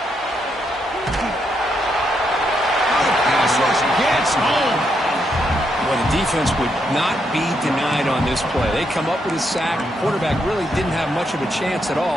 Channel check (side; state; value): both; normal; correlation 0.79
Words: Pass rush gets home. Well, the defense would not be denied on this play. They come up with a sack. The quarterback really didn't have much of a chance at